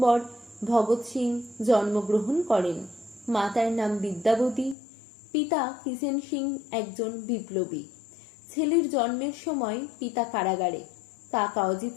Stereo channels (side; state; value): right; drops out; at 4.8 s